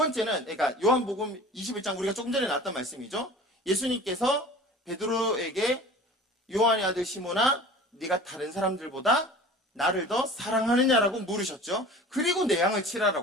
그러니까 요한복음 21장 우리가 조금 전에 나왔던 말씀이죠. 예수님께서 베드로에게 요한의 아들 시몬아, 네가 다른 사람들보다 나를 더 사랑하느냐라고 물으셨죠. 그리고 내 양을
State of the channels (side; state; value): both; normal; correlation 0.41